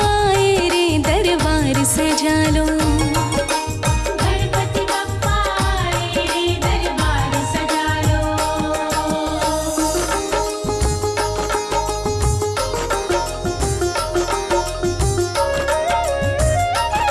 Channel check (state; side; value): identical; both; correlation 1.00